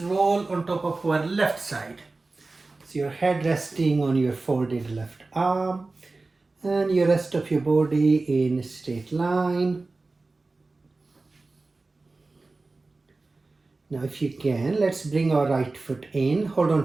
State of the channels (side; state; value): left; quieter; 3.5 dB